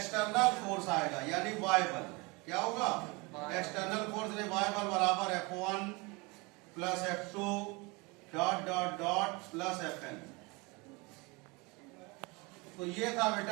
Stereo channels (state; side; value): quieter; left; 26.8 dB